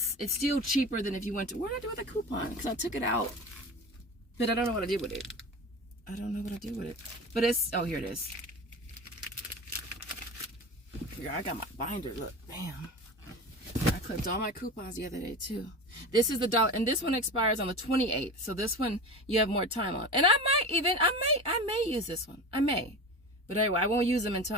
it's still cheaper than if you went to, what did I do with the coupon? Because I took it out, but I don't know what I did with it. I don't know what I did with it. But it's, oh, here it is. Here, I got my binder, look, bam. I clipped all my coupons the other day too. This is the $1, and this one expires on the 28th. So this one you have more time on. And I may use this one. I may. But anyway, I won't use them until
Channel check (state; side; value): normal; both; correlation 0.30